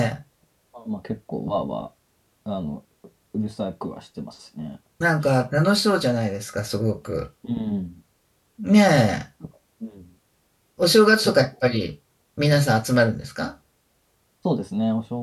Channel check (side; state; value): both; identical; correlation 1.00